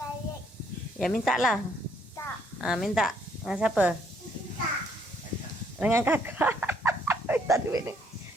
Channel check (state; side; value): normal; both; correlation 0.68